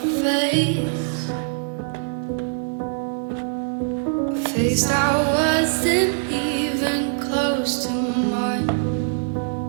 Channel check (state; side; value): silent; left; 64 dB below the other